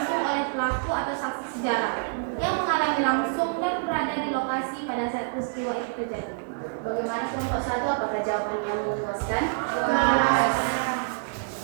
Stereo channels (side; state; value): left; silent; digital silence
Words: oleh pelaku atau saksi sejarah yang mengalami langsung dan berada di lokasi pada saat peristiwa itu terjadi. Bagaimana kelompok 1? Apakah jawaban kamu memuaskan?